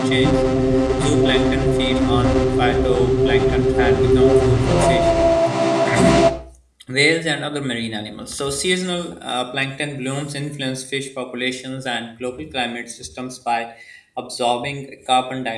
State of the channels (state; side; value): identical; both; correlation 1.00